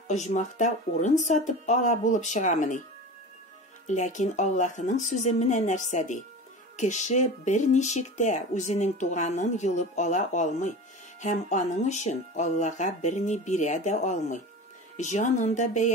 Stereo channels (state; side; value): normal; both; correlation 0.32